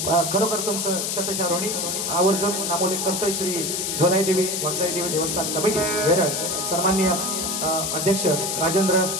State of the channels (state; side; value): noise; left; hiss, 1 dB below the sound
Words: खरोखर तुमचं शतशारोणी आवर्जून नामोल्लेख करतोय श्री झोलाई देवी वागजाई देवी देवस्थान कमिटी वेरळ सन्माननीय अध्यक्ष राजेंद्र